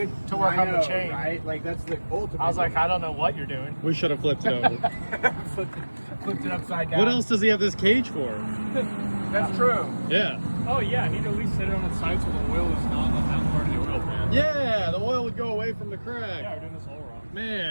To work on the chain. Right? Like, that's the ultimate. I was like, I don't know what you're doing. We should have flipped it over. flipped it upside down. What else does he have this cage for? That's true. Yeah. Oh, yeah. He'd at least sit it on its side so the oil is not on that part of the oil pan. Yeah, the oil would go away from the crack. Yeah, we're doing this all wrong.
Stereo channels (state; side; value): inverted; both; correlation -1.00